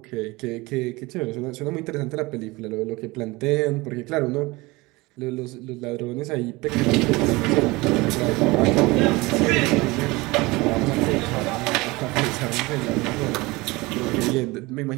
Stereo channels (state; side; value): quieter; left; 22.6 dB